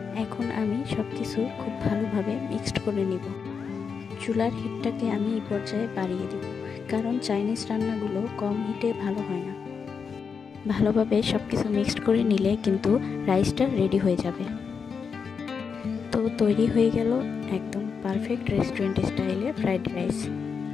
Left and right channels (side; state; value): right; quieter; 5.9 dB